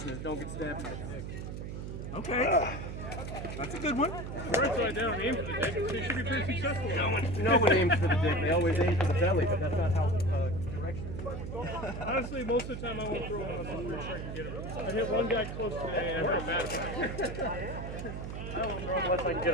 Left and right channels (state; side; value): noise; right; hum, 7 dB below the sound